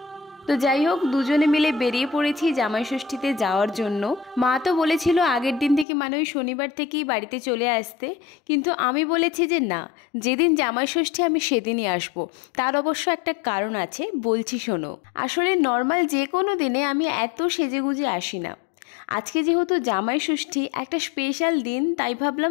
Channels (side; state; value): right; drops out; at 5.9 s